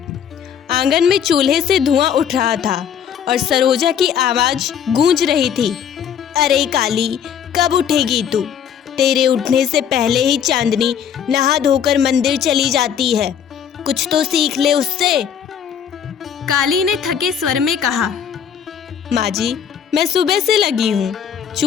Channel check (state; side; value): quieter; right; 8.3 dB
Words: आंगन में चूल्हे से धुआं उठ रहा था और सरोजा की आवाज गूंज रही थी, अरे काली, कब उठेगी तू? तेरे उठने से पहले ही चांदनी नहा धोकर मंदिर चली जाती है, कुछ तो सीख ले उससे। काली ने थके स्वर में कहा, माँ जी, मैं सुबह से लगी हूँ।